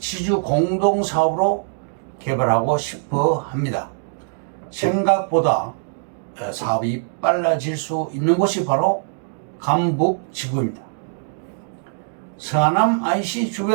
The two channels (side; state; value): left; silent; digital silence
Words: 공동사업으로 개발하고 싶어 합니다. 생각보다 사업이 빨라질 수 있는 곳이 바로 감북지구입니다. 서하남 IC